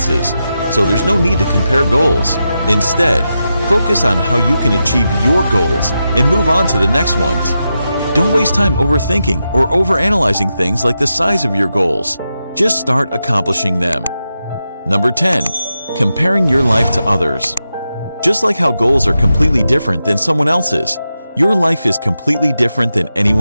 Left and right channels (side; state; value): both; inverted; correlation -0.89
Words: so there's no need to compare goals. Instead, focus on how you can achieve your goals and move on to the next ones. Don't waste time overthinking or overanalyzing things like the size of your goals. Just start accomplishing them. Number 10. Comparing your life to others. Just like how goals are completely different than someone else's, your life is completely different than